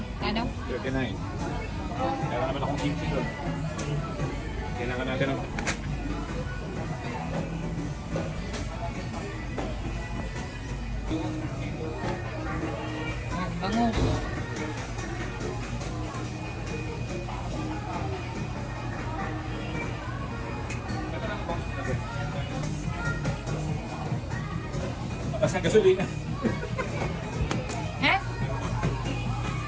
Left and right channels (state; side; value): identical; both; correlation 1.00